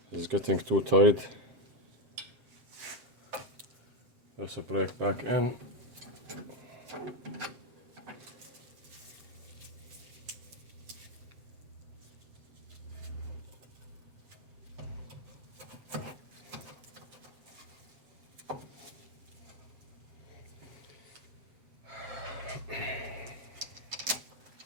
It's getting too tight. There's a brake back in.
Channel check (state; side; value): late; left; 7.8 ms